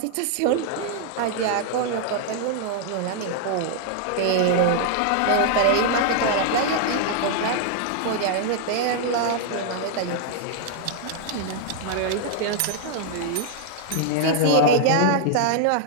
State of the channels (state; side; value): different; both; correlation 0.00